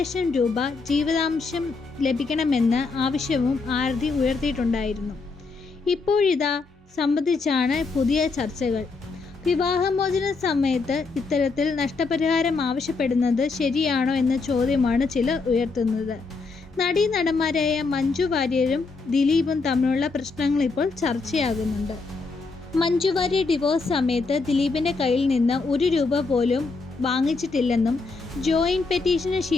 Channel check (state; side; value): quieter; right; 4.2 dB